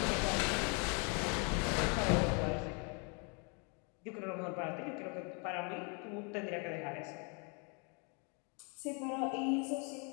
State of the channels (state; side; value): quieter; right; 35.2 dB